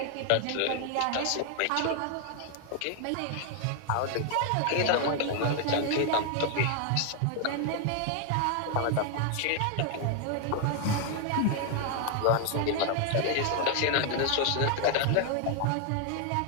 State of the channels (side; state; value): both; different; correlation 0.00